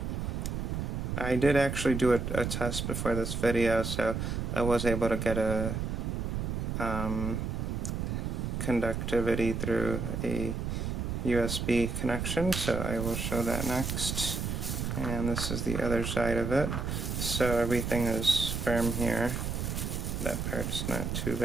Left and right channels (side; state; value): right; noise; rumble, 2 dB below the sound